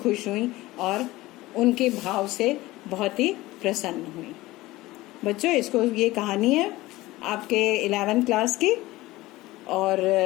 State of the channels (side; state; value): right; quieter; 18.6 dB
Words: हुई और उनके भाव से बहुत ही प्रसन्न हुई। बच्चों, ये कहानी है आपके 11th क्लास की, और